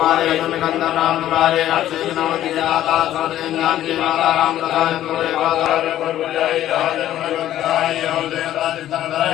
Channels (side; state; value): right; quieter; 12.6 dB